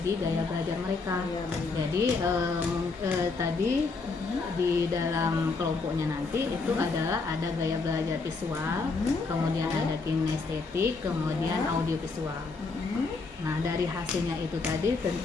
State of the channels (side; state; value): right; quieter; 4.1 dB